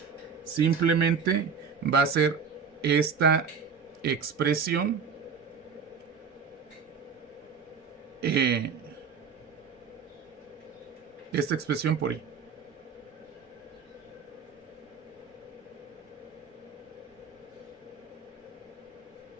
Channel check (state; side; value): quieter; left; 6.1 dB